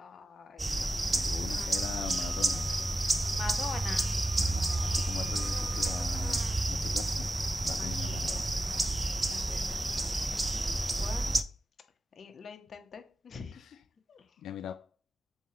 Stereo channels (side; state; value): both; normal; correlation 0.93